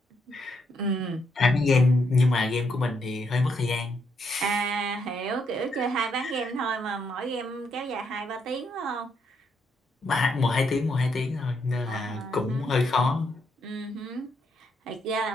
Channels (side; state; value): both; normal; correlation 0.76